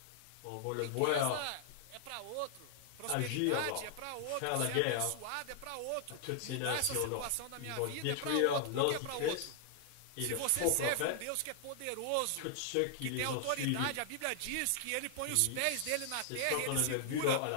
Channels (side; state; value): both; different; correlation -0.01